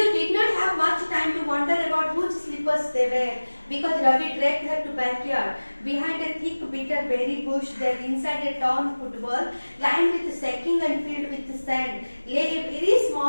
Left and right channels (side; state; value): both; inverted; correlation -1.00